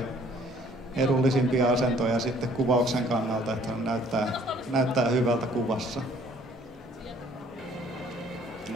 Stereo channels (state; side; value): normal; both; correlation 0.58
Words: edullisimpia asentoja sitten kuvauksen kannalta, että näyttää hyvältä kuvassa.